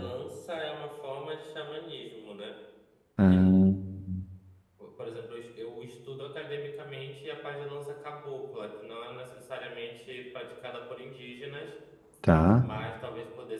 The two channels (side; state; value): both; identical; correlation 1.00